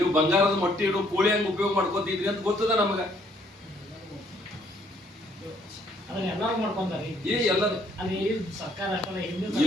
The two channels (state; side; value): normal; both; correlation 0.66